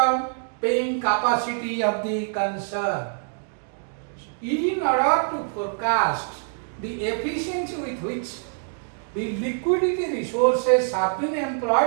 paying capacity of the concern. In order to forecast the efficiency with which the liquidity resources have been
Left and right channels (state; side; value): silent; left; 62 dB below the other